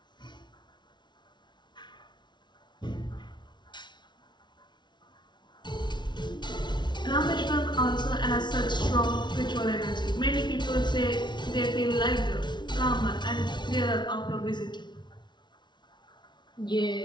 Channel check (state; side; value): late; right; 0.21 ms